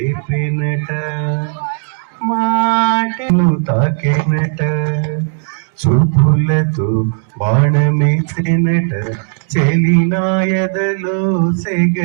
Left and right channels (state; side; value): silent; left; 61 dB below the other